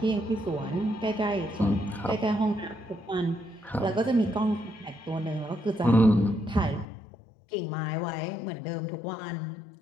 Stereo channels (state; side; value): drops out; right; at 6.9 s